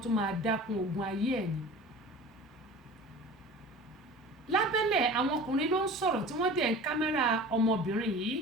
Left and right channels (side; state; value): both; normal; correlation 0.39